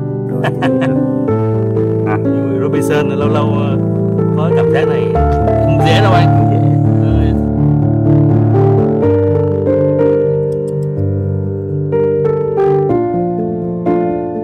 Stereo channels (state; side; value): identical; both; correlation 1.00